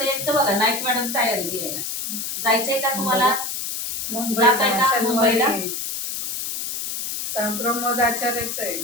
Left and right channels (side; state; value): left; noise; hiss, 4 dB below the sound